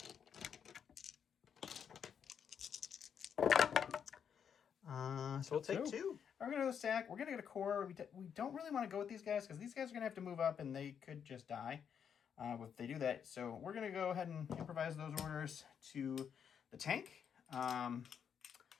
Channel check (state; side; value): quieter; right; 7.7 dB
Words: So we'll take 2. We're going to go stack. We're going to get a core. We don't really want to go with these guys because these guys are going to have to move up and they could just die if they do that. So we're going to go ahead and improvise those orders to the tank. And